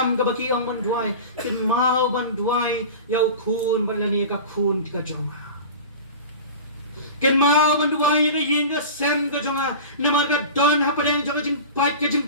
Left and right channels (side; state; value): both; inverted; correlation -0.34